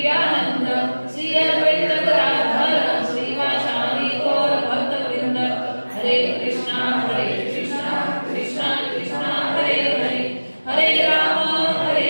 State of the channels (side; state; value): both; inverted; correlation -1.00